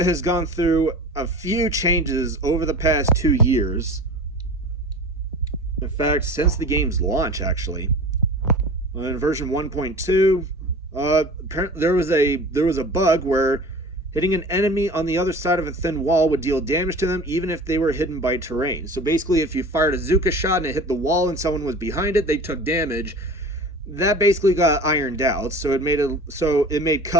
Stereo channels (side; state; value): both; normal; correlation 0.38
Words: has gone through a few changes over the past 2 years. In fact, since the game's launch, actually. In version 1.2, there was a bug where hitting an enemy on the other side of a thin wall would deal damage to them even if they were hidden by terrain. So basically, if you fired a Zuka shot and it hit the wall and someone was behind it, they took damage. That basically got ironed out, so it made